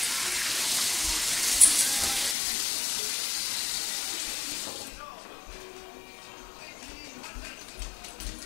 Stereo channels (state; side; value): drops out; right; at 2.4 s